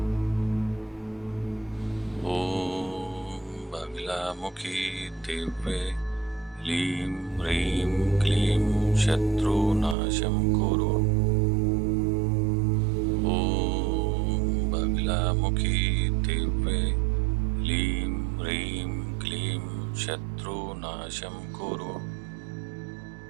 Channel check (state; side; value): drops out; left; at 10.0 s